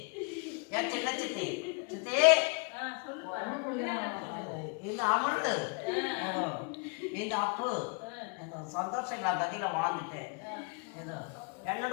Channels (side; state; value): right; quieter; 37.1 dB